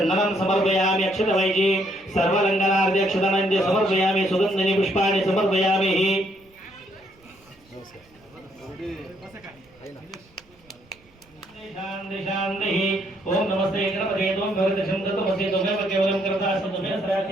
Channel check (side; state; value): right; noise; rumble, 30 dB below the sound